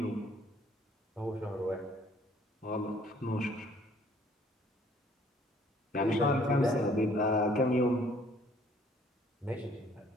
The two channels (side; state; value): both; normal; correlation 0.59